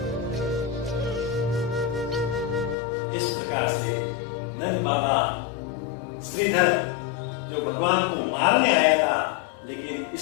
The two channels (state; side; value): drops out; right; at 2.8 s